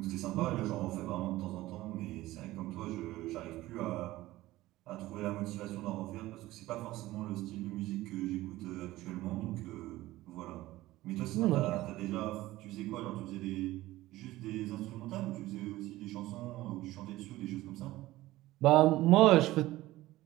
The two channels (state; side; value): quieter; left; 17.1 dB